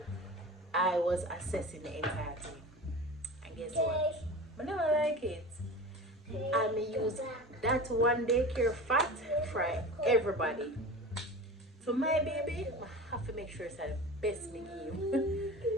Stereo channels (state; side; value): normal; both; correlation 0.33